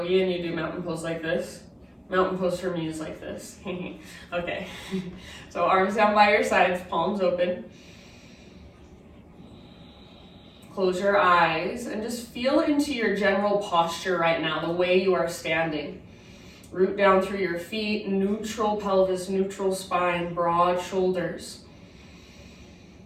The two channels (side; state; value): both; identical; correlation 1.00